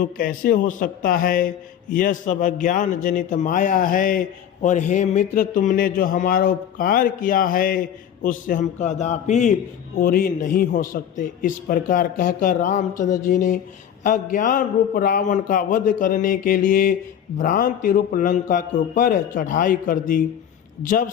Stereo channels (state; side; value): quieter; right; 9.4 dB